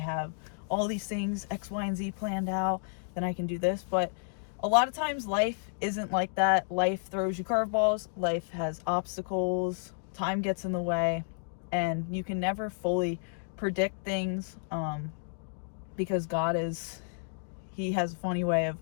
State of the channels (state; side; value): silent; right; digital silence